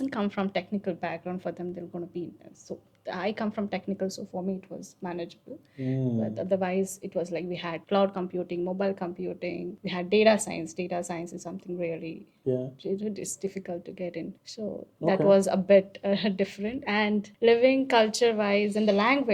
come from technical background, for them they're going to be intense. So I come from technical, so for me it was manageable. But otherwise, it was like we had cloud computing, mobile computing, we had data science. Data science is something really it's difficult to get in. So that was a bit different. And living culture wise and the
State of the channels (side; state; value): both; identical; correlation 1.00